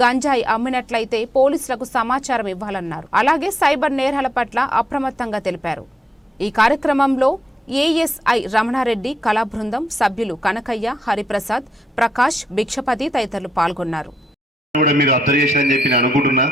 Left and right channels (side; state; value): both; normal; correlation 0.82